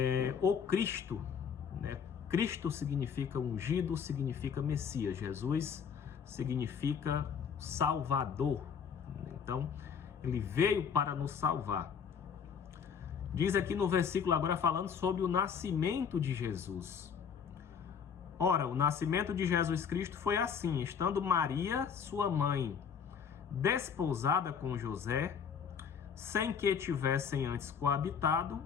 o Cristo, né? Cristo significa ungido, significa Messias. Jesus significa Salvador. Então, ele veio para nos salvar. Diz aqui no versículo agora falando sobre o nascimento de Jesus. Ora, o nascimento de Jesus Cristo foi assim: estando Maria, sua mãe, desposada com José, sem que tivessem antes coabitado,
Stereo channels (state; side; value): quieter; right; 7.0 dB